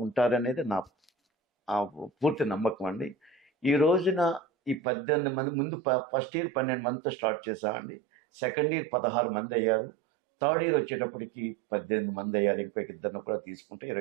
ఉంటారనేది నా పూర్తి నమ్మకం అండి. ఈ రోజున ఈ 18 మంది ముందు ఫస్ట్ ఇయర్ 12 మందితో స్టార్ట్ చేసామండి. సెకండ్ ఇయర్ 16 మంది అయ్యారు. థర్డ్ ఇయర్ వచ్చేటప్పటికి 18 మంది అయ్యారు. ఇంకొక ఇద్దరిని కూడా తీసుకుంటే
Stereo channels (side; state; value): left; drops out; at 4.8 s